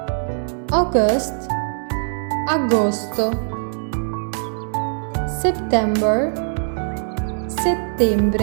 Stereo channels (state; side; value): silent; left; digital silence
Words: August, agosto. September,